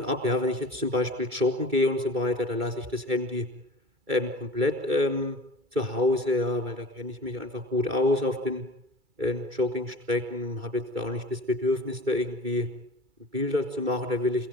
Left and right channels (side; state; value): left; late; 2.3 ms